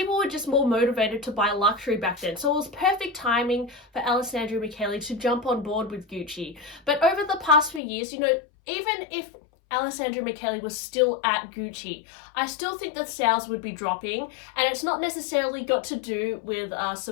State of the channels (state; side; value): drops out; right; at 7.8 s